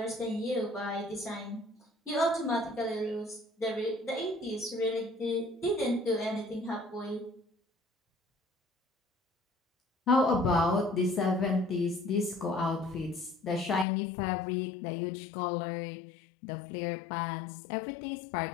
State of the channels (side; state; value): right; drops out; at 13.9 s